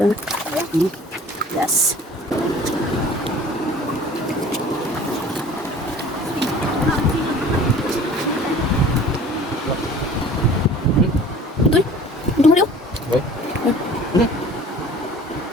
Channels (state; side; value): normal; both; correlation 0.47